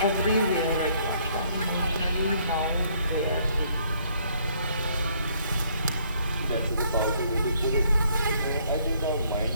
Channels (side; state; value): both; inverted; correlation -0.65